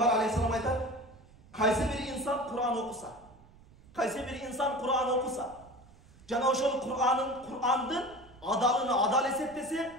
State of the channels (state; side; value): noise; right; rumble, 24 dB below the sound